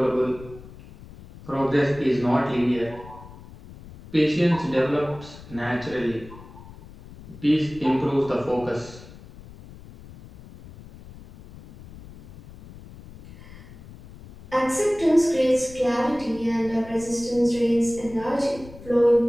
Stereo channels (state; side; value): noise; left; rumble, 18 dB below the sound